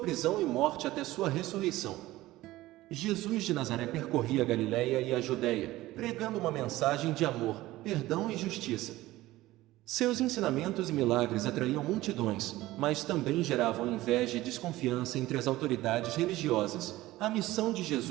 e morte até sua ressurreição. Jesus de Nazaré percorria a Galiléia e a Judéia, pregando uma mensagem de amor, perdão e justiça. Seus ensinamentos e milagres atraíam multidões, mas também geravam inveja e desconfiança entre as autoridades religiosas. A missão de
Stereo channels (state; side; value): quieter; left; 17.1 dB